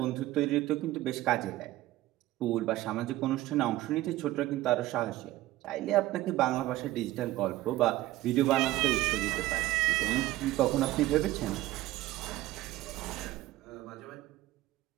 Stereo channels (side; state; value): left; quieter; 16.1 dB